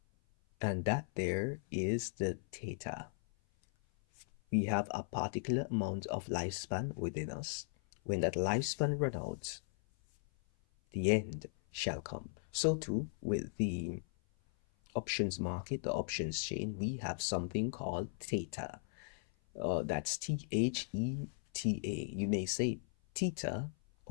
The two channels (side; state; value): right; silent; 53 dB below the other